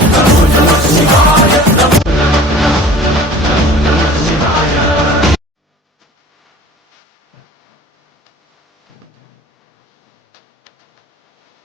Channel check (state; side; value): normal; both; correlation 0.44